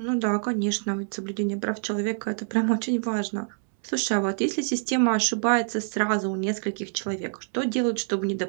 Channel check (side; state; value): left; silent; 61 dB below the other